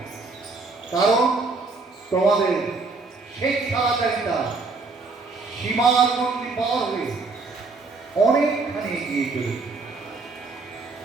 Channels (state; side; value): quieter; left; 3.9 dB